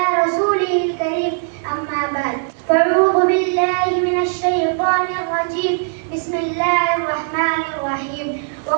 रसूलिल करीम अम्मा बाद फ़अऊज़ु बिल्लाहि मिनश शैतानिर रजीम बिस्मिल्लाहिर रहमानिर रहीम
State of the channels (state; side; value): silent; left; digital silence